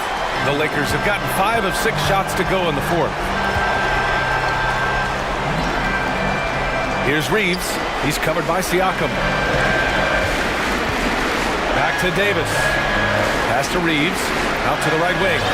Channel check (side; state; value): both; identical; correlation 1.00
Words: The Lakers have gotten 5 of 6 shots to go in the fourth. Here's Reeves. He's covered by Siakam. Back to Davis. Pass to Reeves. Out to the right wing.